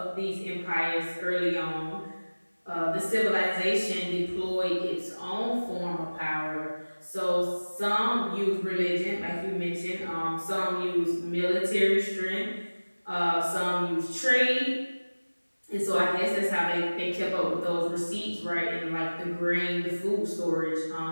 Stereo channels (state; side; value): inverted; both; correlation -1.00